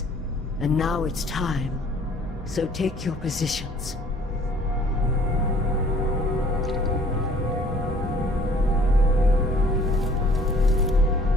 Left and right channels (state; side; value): noise; left; hum, 18 dB below the sound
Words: And now it's time. So take your positions.